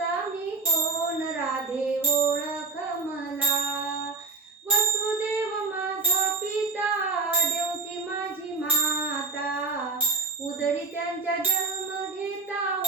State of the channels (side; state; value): left; quieter; 4.0 dB